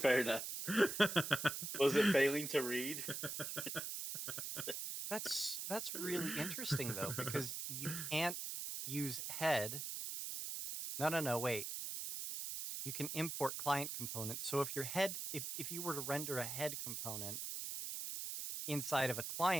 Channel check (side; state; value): right; noise; hiss, 4 dB below the sound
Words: enough. Was it failing to read? That's really interesting though, because you can't use head. No, wait. You can import client components. So if your head, if you were to render a head component inside of a